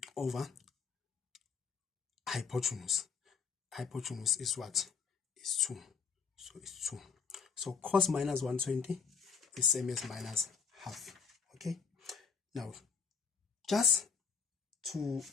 over hypotenuse. Hypotenuse is what? Is 2. So it's 2. So cos minus 120 is same as minus half. Okay. Now, just to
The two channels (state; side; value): quieter; right; 5.9 dB